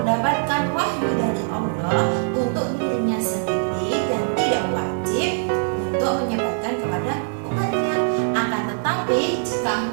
wahyu dari Allah untuk dirinya sendiri dan tidak wajib untuk menyebarkan kepada umatnya. Akan tetapi jika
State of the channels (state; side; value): silent; left; 64 dB below the other